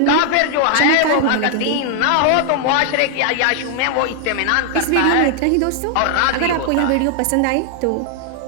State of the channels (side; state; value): both; different; correlation 0.00